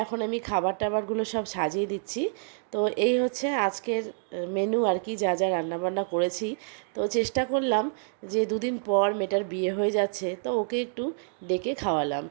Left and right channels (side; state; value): left; silent; digital silence